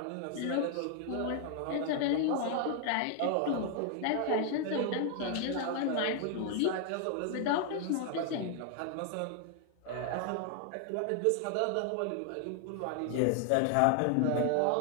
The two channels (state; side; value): different; both; correlation 0.00